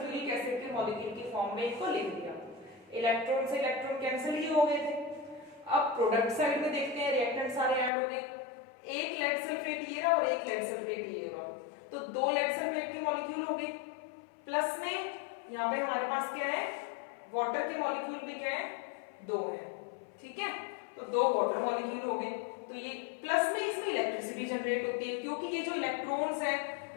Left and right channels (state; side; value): drops out; right; at 7.9 s